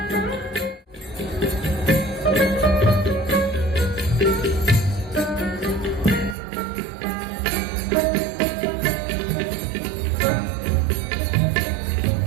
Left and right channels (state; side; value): drops out; left; at 6.4 s